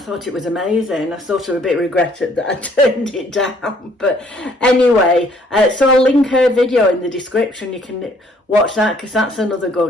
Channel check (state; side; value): normal; both; correlation 0.62